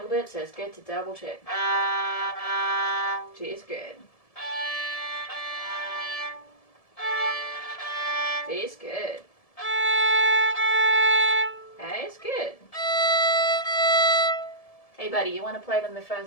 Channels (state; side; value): late; right; 1.7 ms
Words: bit, so it's good to double check. G is good. D is good. A is good. Hey buddy, you want to play them the